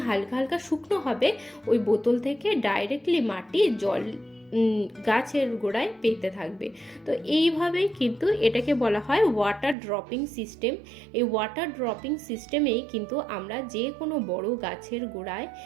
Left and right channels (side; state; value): left; drops out; at 9.8 s